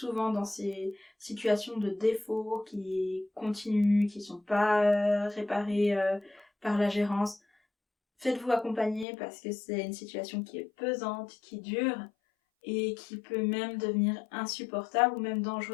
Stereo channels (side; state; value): right; drops out; at 9.1 s